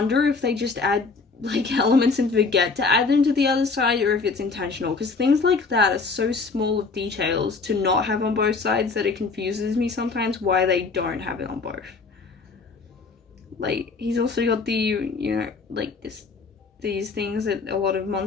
if they just add like elements and forget to add them to the other side, or if it's intentional, because things like that are so small of details to not have on both sides that it confuses me sometimes why they don't have it on both. Like, he's also got the, you know, like these things that a lot of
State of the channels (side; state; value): right; quieter; 4.4 dB